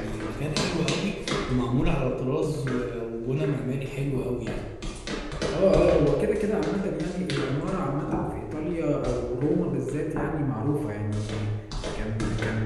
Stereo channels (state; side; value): identical; both; correlation 1.00